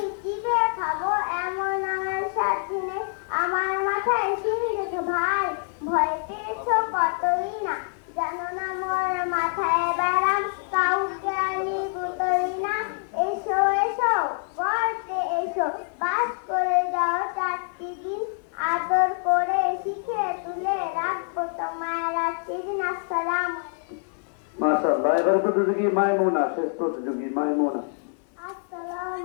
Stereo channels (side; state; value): right; silent; 61 dB below the other